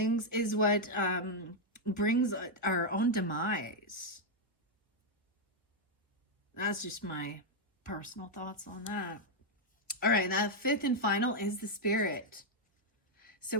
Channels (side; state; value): both; normal; correlation -0.01